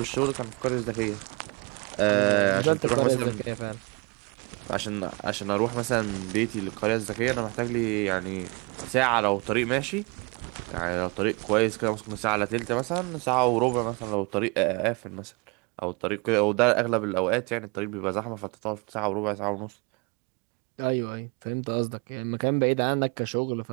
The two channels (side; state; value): left; quieter; 29.8 dB